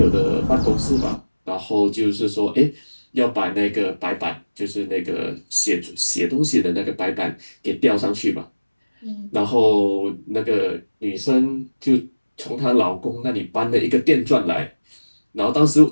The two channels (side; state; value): both; inverted; correlation -1.00